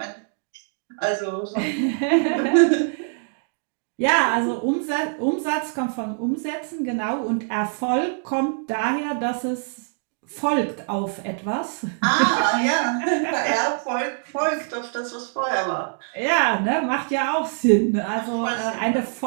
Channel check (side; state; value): left; silent; digital silence